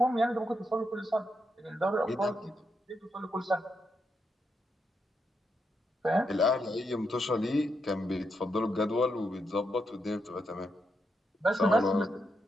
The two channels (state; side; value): normal; both; correlation 0.82